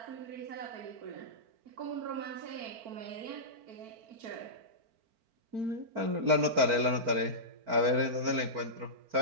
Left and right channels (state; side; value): late; left; 4.4 ms